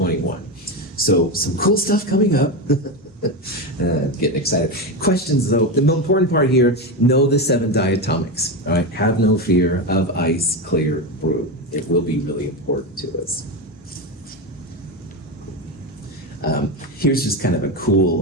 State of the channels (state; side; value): normal; both; correlation 0.16